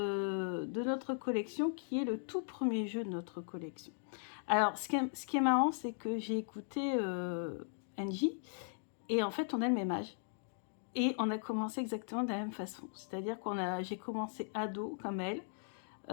notre collection qui est le tout premier jeu de notre collection. Alors ce qui est marrant, c'est que j'ai écouté Angie et en fait on a le même âge. Et on a commencé exactement de la même façon. C'est-à-dire j'ai commencé ado comme elle.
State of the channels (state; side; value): silent; right; digital silence